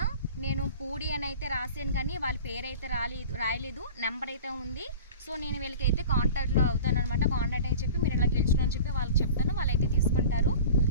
నేను పూడి అని అయితే రాసాను కానీ వాళ్ళ పేరు అయితే రాయలేదు, నెంబర్ అయితే ఉంది. సో నేను వీళ్ళకైతే కాంటాక్ట్లో అవుతాను అనమాట. కాంటాక్ట్ అని చెప్పి మీరు ఇలా గెలుచుకుని అని చెప్పి వాళ్ళకి చెప్తాను, వాళ్ళైతే తీసుకుంటారు.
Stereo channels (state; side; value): inverted; both; correlation -0.39